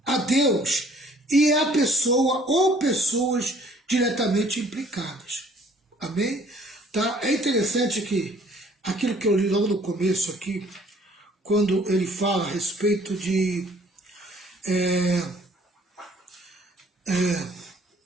a Deus e a pessoa ou pessoas diretamente implicadas. Amém? Tá? É interessante que aquilo que eu li logo no começo aqui, quando ele fala a respeito de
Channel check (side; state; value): both; normal; correlation 0.57